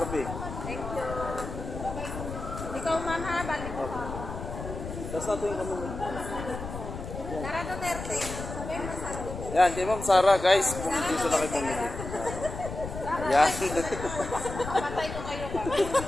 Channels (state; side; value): noise; left; rumble, 8 dB below the sound